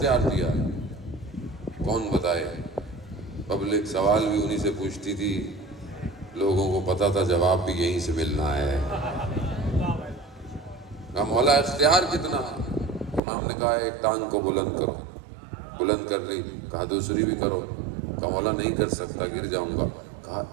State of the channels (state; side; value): drops out; left; at 13.2 s